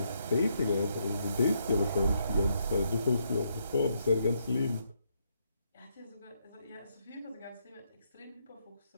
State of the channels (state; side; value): inverted; both; correlation -0.76